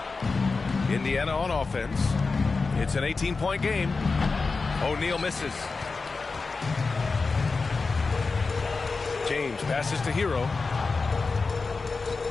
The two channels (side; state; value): right; quieter; 4.2 dB